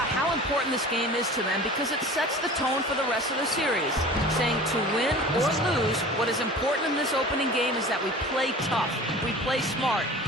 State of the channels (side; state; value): both; normal; correlation 0.40